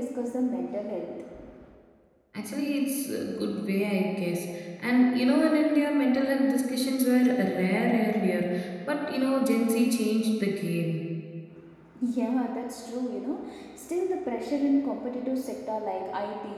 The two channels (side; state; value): both; identical; correlation 1.00